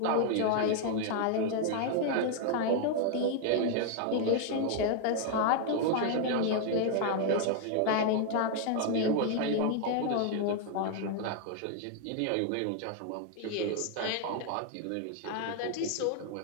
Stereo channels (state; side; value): different; both; correlation 0.00